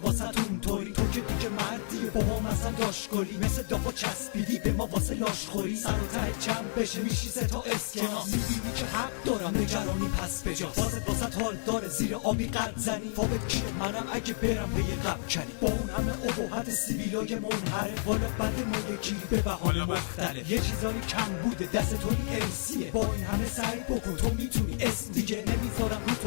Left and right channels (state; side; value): silent; right; digital silence